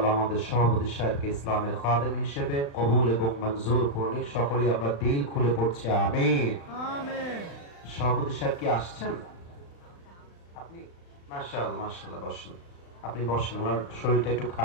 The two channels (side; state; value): right; late; 35 ms